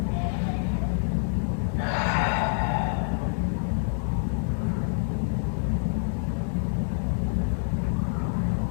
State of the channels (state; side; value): silent; right; digital silence